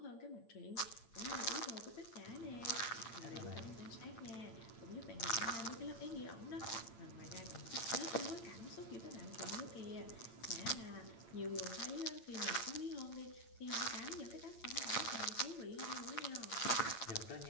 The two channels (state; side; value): late; right; 8.7 ms